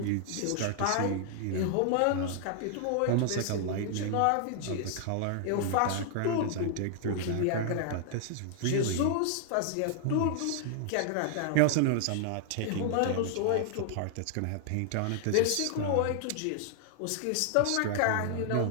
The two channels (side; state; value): both; different; correlation -0.01